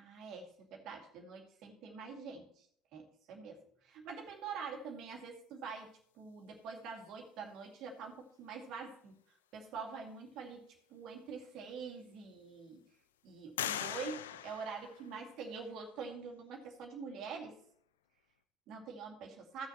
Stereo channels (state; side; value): normal; both; correlation 0.29